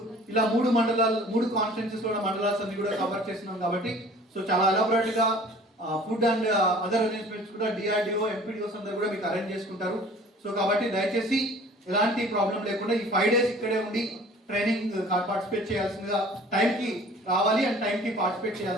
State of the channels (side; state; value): both; normal; correlation 0.48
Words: ఇలా 3 మండలాలు, 3 కాన్స్టిట్యున్సీస్ లో మండలాస్ అన్ని కూడా కవర్ చేస్తున్నాం. కాబట్టి సో చాలా ఎలాబరేట్ గా ఫుడ్ అండ్ అదర్ అరేంజ్మెంట్స్ కూడా డిఆర్డిఓ, ఎంపీడీఓస్ అందరూ కూడా మీకు అరేంజ్ చేసుకుంటారు. సో కాబట్టి దయచేసి ఎలాంటి ప్రాబ్లం లేకుండా ఈ 5 days ఇక్కడే ఉండి ట్రైనింగ్ పార్టిసిపేట్ చేయాల్సిందిగా, టైంకి రావాలి అండ్ టైంకి పార్టిసిపేట్